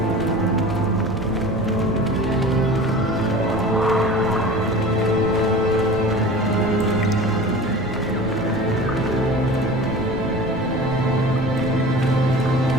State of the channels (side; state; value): right; noise; rumble, 13 dB below the sound